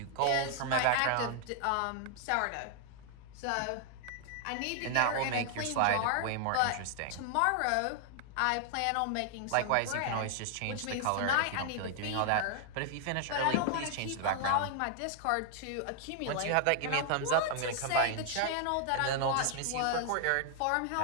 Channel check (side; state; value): both; different; correlation 0.00